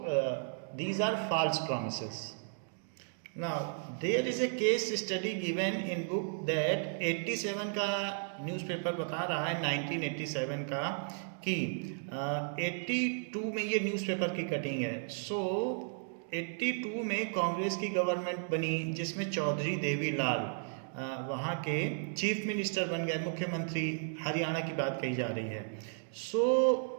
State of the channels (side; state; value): left; silent; digital silence